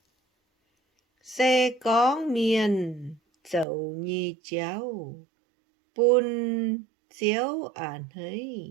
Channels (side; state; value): left; drops out; at 3.7 s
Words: xe con miên dẫu nhì chéo bún chiếu ản hấy